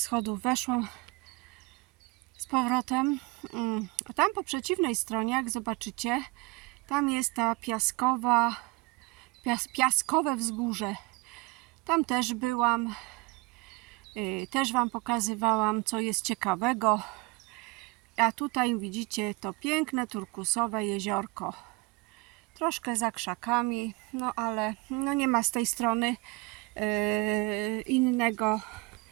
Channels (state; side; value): quieter; left; 25.7 dB